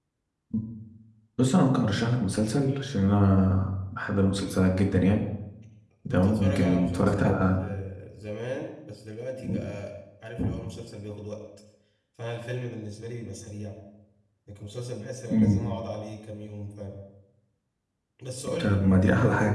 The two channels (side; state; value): both; identical; correlation 1.00